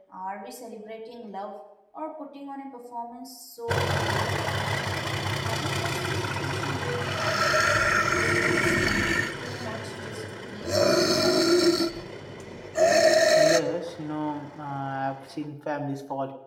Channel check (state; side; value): identical; both; correlation 1.00